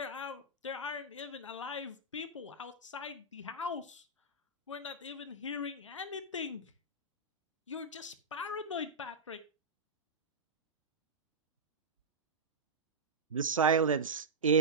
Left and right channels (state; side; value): quieter; left; 3.3 dB